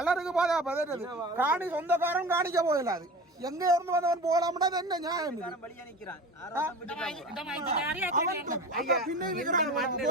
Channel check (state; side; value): normal; both; correlation 0.34